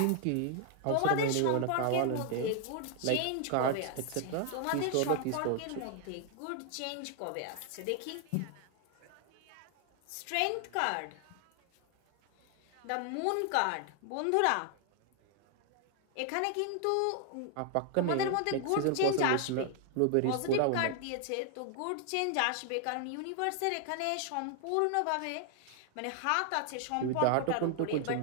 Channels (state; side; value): different; both; correlation 0.00